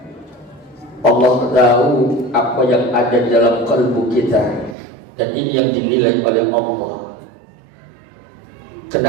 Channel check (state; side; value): drops out; left; at 4.8 s